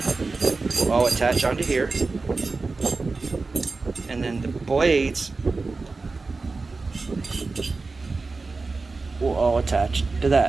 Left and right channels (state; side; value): quieter; left; 3.9 dB